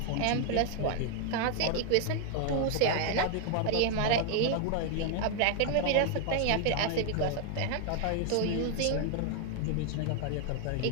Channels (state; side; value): different; both; correlation 0.00